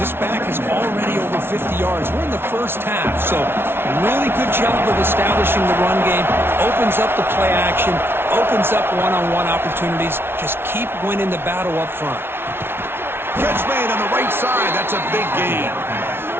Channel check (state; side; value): late; left; 0.11 ms